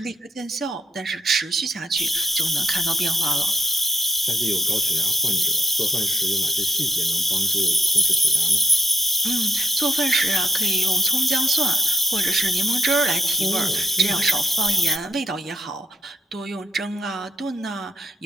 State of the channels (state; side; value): normal; both; correlation 0.71